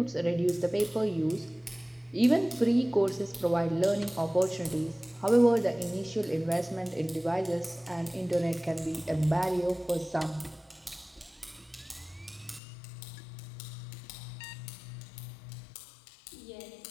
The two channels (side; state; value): right; drops out; at 12.6 s